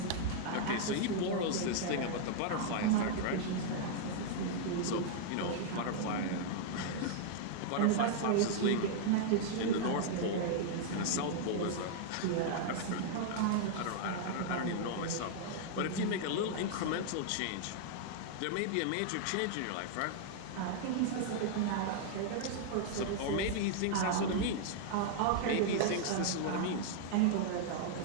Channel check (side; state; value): both; different; correlation -0.01